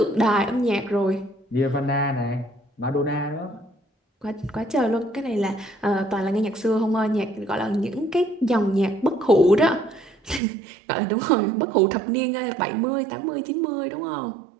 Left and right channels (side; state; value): left; drops out; at 10.4 s